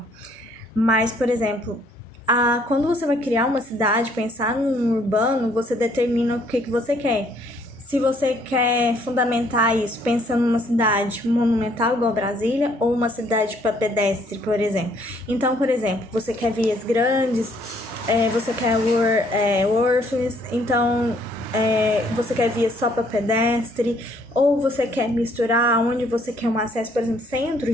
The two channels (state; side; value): normal; both; correlation 0.65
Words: Mas, por exemplo, quando você vai criar uma cidade, pensar num urbano, você determina o que você quer. Se você quer fundamentar isso pensando numa cidade monumental igual Brasília ou uma cidade para pedestre, por exemplo. Então, por exemplo, você quer vias grandes, você quer orphans, então você quer vias só para pedestre, ou você quer misturar onde você quer um acesso, por exemplo, centro,